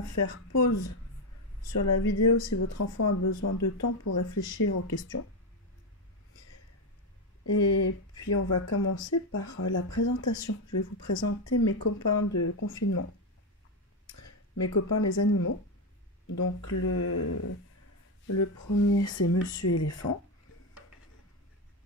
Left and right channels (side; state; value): both; normal; correlation 0.09